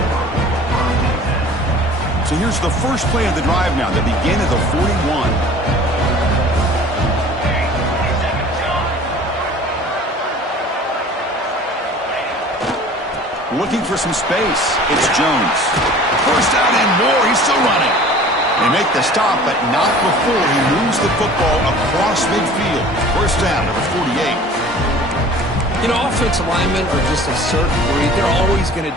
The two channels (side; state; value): both; normal; correlation 0.46